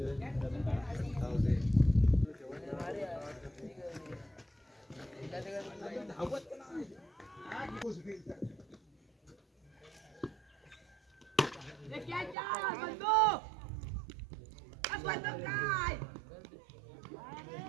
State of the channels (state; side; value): drops out; left; at 12.4 s